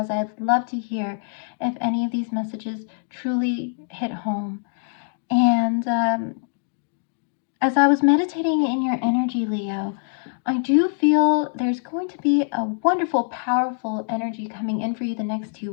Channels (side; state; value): right; silent; digital silence